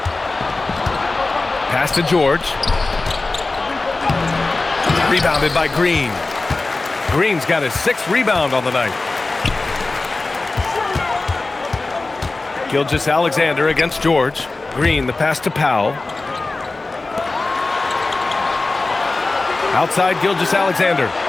Pass to George. Rebounded by Green. Green's got his 6th rebound on the night. Gilgeous-Alexander against George. Green, the pass to Powell. Outside Gilgeous-Alexander.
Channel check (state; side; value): quieter; right; 3.4 dB